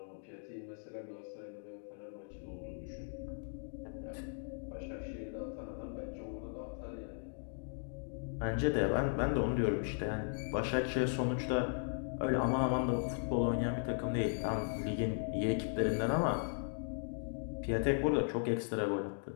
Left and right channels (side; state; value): right; silent; digital silence